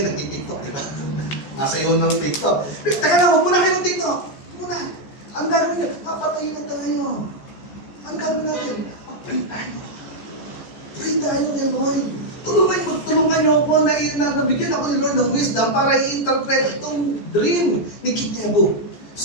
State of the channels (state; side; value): late; right; 14 ms